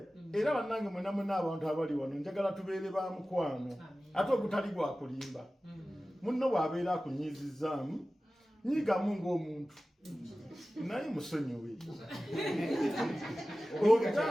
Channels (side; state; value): both; normal; correlation 0.96